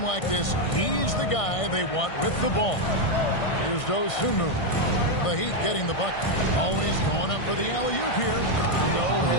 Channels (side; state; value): right; late; 1.6 ms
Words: like this, he's the guy they want with the ball. Here's Dosunmu. The Heat getting the bucket. Always going up for the alley-oop here. No